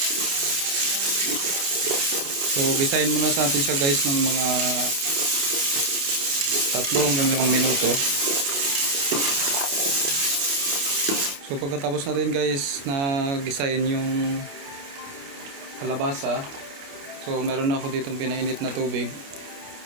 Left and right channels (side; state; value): left; late; 29 ms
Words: So gisahin muna sa atin siya guys ng mga 3 hanggang 5 minuto. So pagkatapos natin guys na gisahin yung kalabasa, so meron na ako ditong pinainit na tubig.